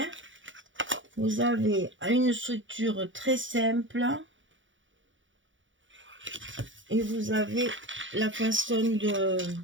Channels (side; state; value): left; late; 0.56 ms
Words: Vous avez une structure très simple. Et vous avez la façon de